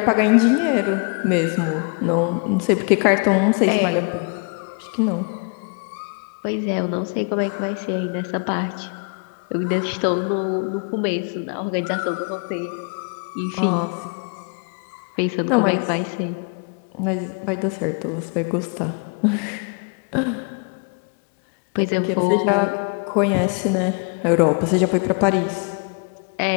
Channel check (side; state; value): right; quieter; 36.9 dB